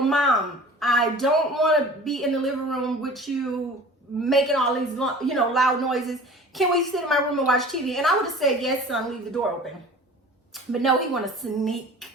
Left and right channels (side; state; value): both; normal; correlation 0.43